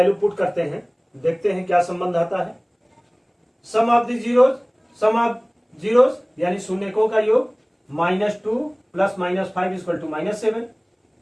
पुट करते हैं, देखते हैं क्या संबंध आता है। सम ऑफ द जीरोज यानी शून्यकों का योग -2 + -5 = -7।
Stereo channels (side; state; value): both; identical; correlation 1.00